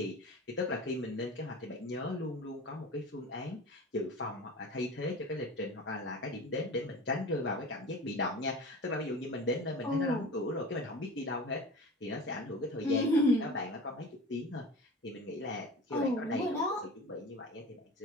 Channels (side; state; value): both; normal; correlation 0.35